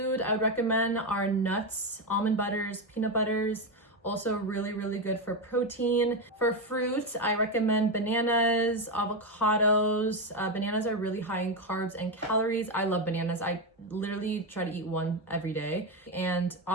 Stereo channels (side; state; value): both; normal; correlation 0.10